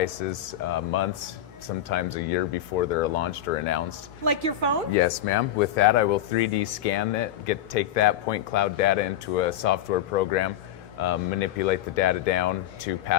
months, sometimes a year before they're launched or announced. Like your phone? Yes, ma'am. With that, I will 3D scan it, take that point cloud data into a software program, manipulate the data down to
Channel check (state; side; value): quieter; right; 11.1 dB